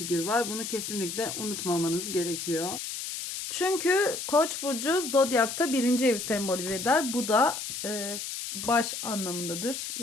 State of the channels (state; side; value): noise; left; hiss, 6 dB below the sound